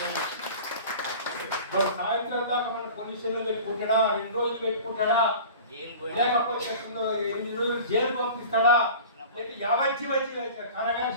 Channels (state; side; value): inverted; both; correlation -0.39